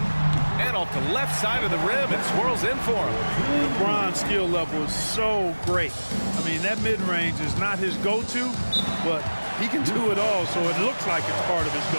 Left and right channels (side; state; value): both; inverted; correlation -1.00